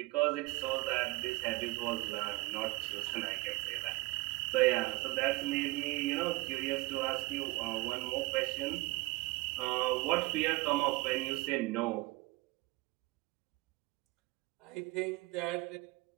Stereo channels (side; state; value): left; quieter; 22.3 dB